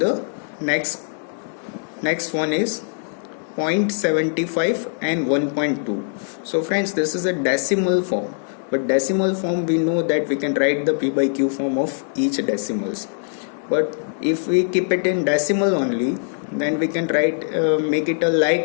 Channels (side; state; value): right; silent; digital silence